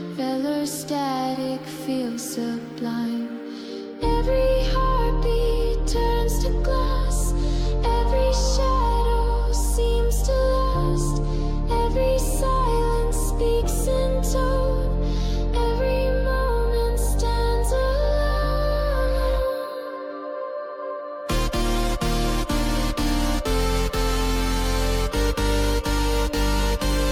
Velar static feels sublime. Every heartbeat turns to glass. Every shadow seems to last. Every silence speaks in tone. Every moment stands alone.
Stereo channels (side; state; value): both; identical; correlation 1.00